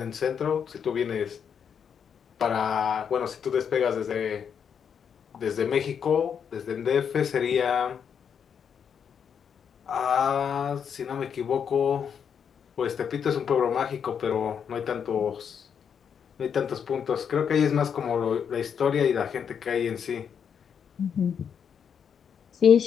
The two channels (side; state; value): right; quieter; 7.4 dB